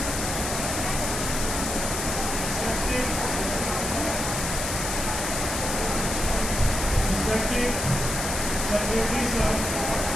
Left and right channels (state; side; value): noise; left; hiss, 3 dB below the sound